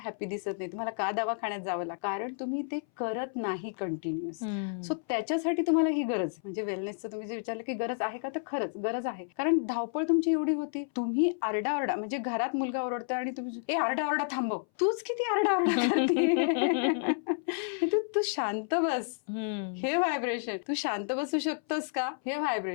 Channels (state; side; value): silent; right; 57 dB below the other